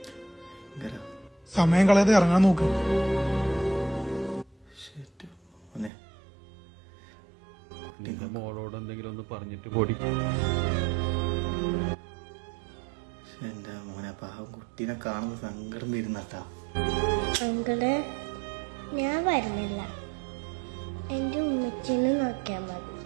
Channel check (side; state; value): left; drops out; at 5.9 s